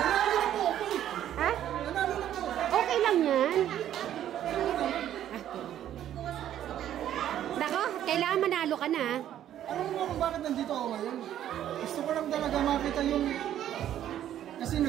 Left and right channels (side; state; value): left; quieter; 11.3 dB